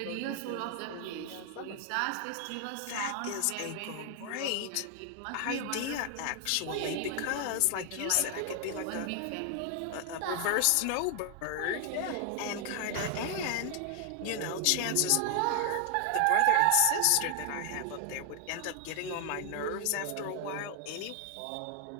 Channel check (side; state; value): both; different; correlation 0.00